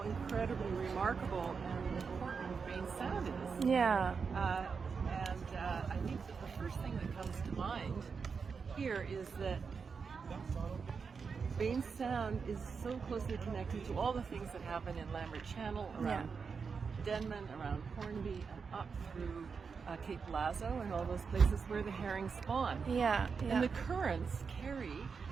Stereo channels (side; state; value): left; quieter; 5.5 dB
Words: remarkable and important Baynes Sound is. Yeah. I think that the first thing that comes to mind here is that Baynes Sound is so closely connected to all the things that happen in Lambert Channel, around Denman, around Hornby, and up through Cape Lazo and all those places where the herring spawn. Yeah. And the currents carry